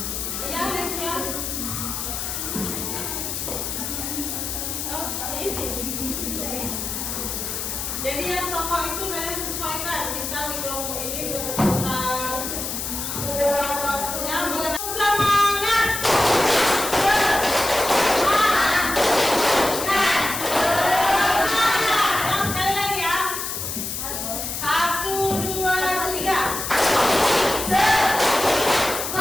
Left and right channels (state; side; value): noise; left; hiss, 4 dB below the sound